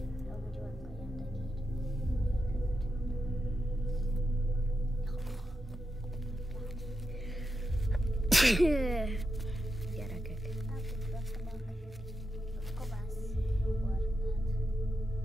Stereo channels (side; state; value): both; normal; correlation 0.88